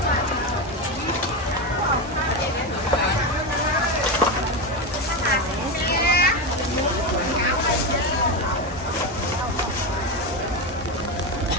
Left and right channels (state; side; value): normal; both; correlation 0.14